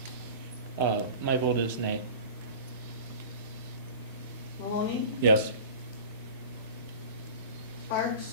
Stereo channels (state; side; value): inverted; both; correlation -0.38